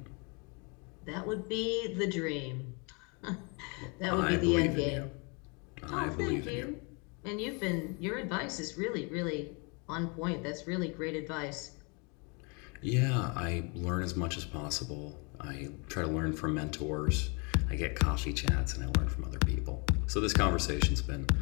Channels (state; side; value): quieter; right; 32.8 dB